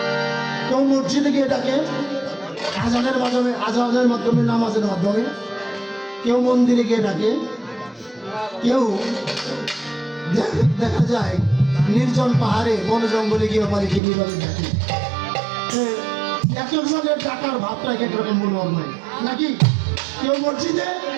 কেউ মসজিদে গিয়ে ডাকে আজানের মাধ্যমে, আজানের মাধ্যমে, নামাজের মাধ্যমে। কেউ মন্দিরে গিয়ে ডাকে, কেউ দেখা যায় নির্জন পাহাড়ে বনে জঙ্গলে গিয়ে মালিককে নীরবে ডাকে। এক একজনের ডাকার ভাবটা এক একরকম মনোহর নয় নাকি? কেউ মসজিদে,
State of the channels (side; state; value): left; drops out; at 14.0 s